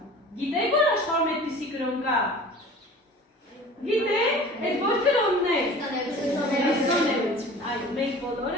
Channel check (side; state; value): both; normal; correlation 0.42